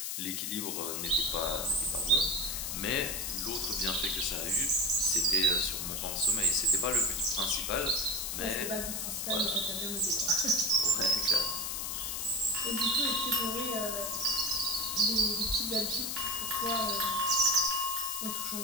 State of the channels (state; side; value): noise; left; hiss, 3 dB below the sound